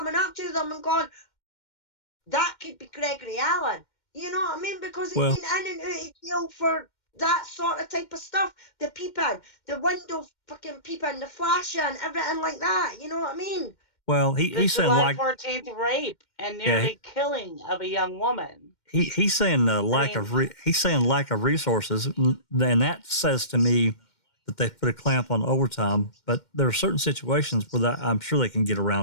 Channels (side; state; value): right; late; 2.1 ms